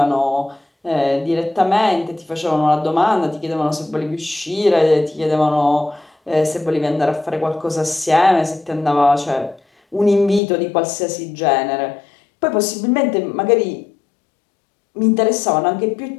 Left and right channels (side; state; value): right; drops out; at 10.4 s